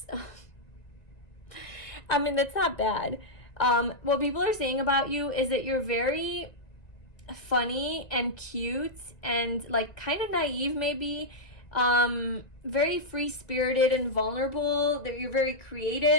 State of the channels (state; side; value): late; right; 1.9 ms